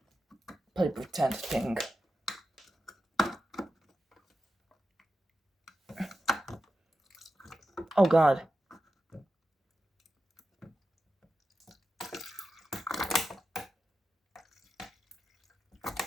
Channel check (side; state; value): both; normal; correlation 0.90